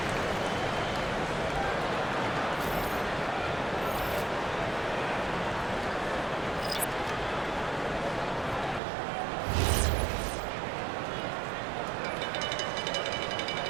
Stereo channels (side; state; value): left; drops out; at 8.8 s